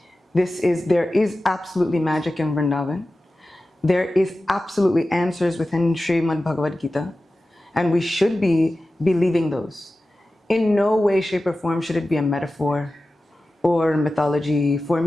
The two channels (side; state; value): both; normal; correlation 0.95